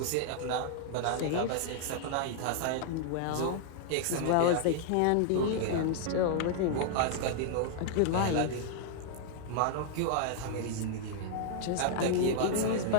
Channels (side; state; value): both; different; correlation 0.00